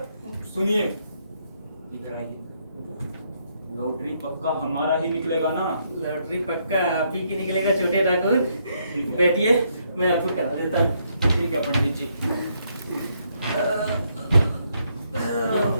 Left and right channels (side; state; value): both; inverted; correlation -0.74